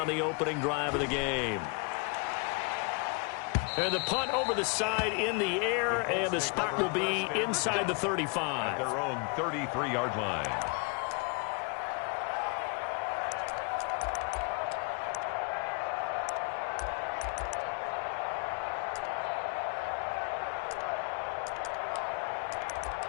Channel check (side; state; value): right; quieter; 33.6 dB